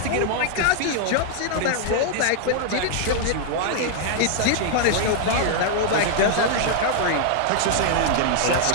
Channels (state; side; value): different; both; correlation 0.00